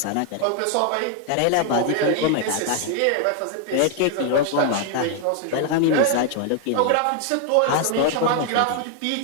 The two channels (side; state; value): both; different; correlation 0.00